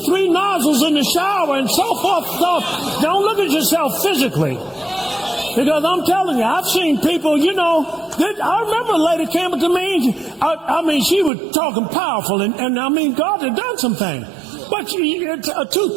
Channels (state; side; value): drops out; left; at 11.3 s